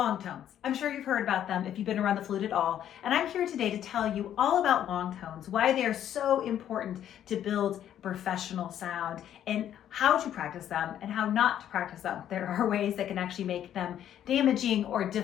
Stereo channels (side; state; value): right; quieter; 10.6 dB